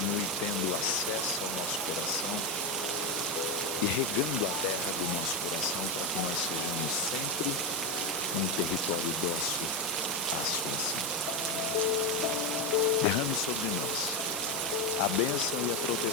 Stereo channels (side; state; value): both; normal; correlation 0.11